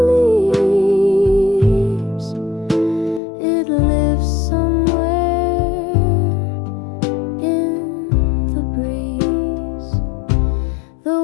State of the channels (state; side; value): drops out; right; at 3.2 s